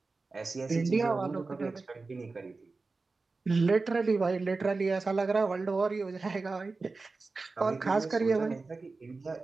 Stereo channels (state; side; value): quieter; left; 3.9 dB